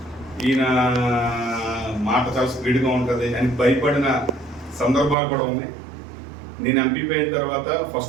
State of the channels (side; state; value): left; drops out; at 5.2 s